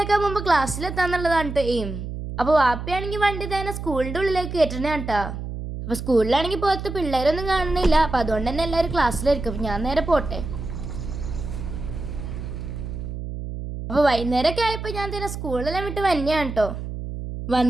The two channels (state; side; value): noise; right; hum, 7 dB below the sound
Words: മുമ്പ് ക്ലാസ്സിലെത്താന്നുള്ളതാണ് കേട്ടോ എയിം. അപ്പോൾ വാപ്പയാണെങ്കിൽ വണ്ടി തന്നെ സ്കൂളിൻ്റെ ഉള്ളിലേക്ക് കയറ്റണേ കേട്ടോ. അപ്പോൾ സ്കൂളിലാണെങ്കിൽ പുറത്ത് പിള്ളേരൊന്നും കാണുന്നില്ല. അപ്പോൾ അതുകൊണ്ട് തന്നെ എല്ലാവരും ക്ലാസ്സിലായിരിക്കും. അപ്പോൾ ഞാൻ നേരെ പോട്ടെ. അപ്പോൾ വൈകുന്നേരമൊക്കെ ആയപ്പോൾ ഞാൻ തന്നെ സ്കൂളിലെല്ലാം വിട്ട് വന്നെയാണ് കേട്ടോ.